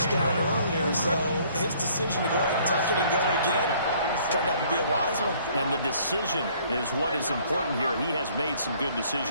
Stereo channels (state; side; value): inverted; both; correlation -0.59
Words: earlier, so his decision to go ahead and tuck it and go again turned out to be a wise one. And the decision is what is important here. He has made some good